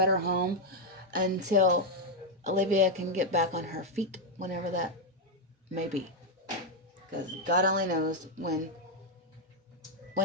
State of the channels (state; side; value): normal; both; correlation 0.00